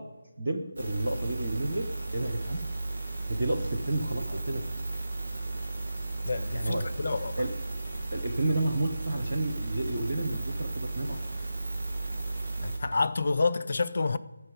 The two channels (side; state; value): both; inverted; correlation -0.91